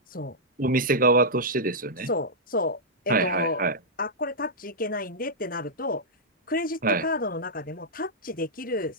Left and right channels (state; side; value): normal; both; correlation -0.09